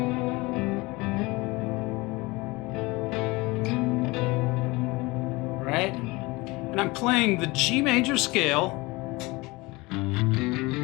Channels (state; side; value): quieter; right; 23.1 dB